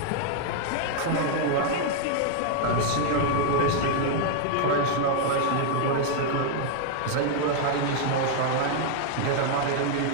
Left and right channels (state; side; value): different; both; correlation 0.00